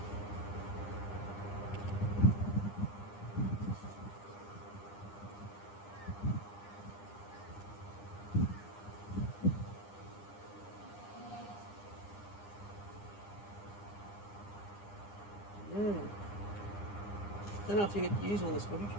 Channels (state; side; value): late; right; 9.9 ms